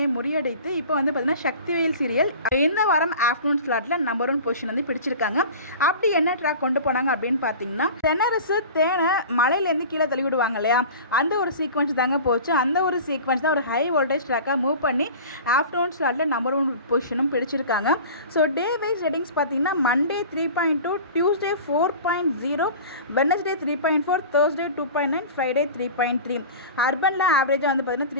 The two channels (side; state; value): both; inverted; correlation -0.37